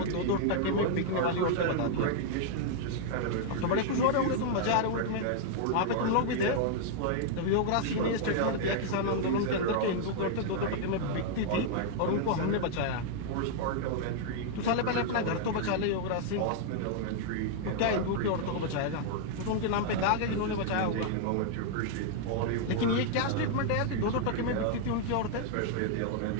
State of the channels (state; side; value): different; both; correlation -0.01